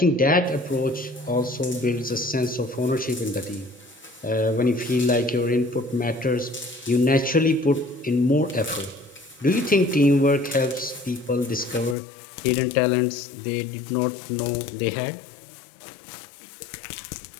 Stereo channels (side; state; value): right; drops out; at 12.0 s